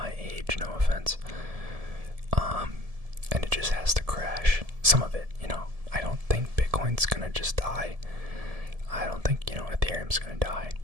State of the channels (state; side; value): late; left; 1.7 ms